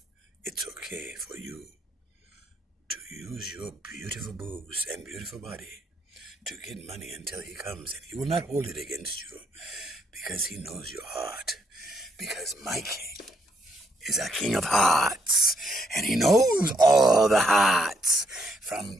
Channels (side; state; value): both; normal; correlation 0.72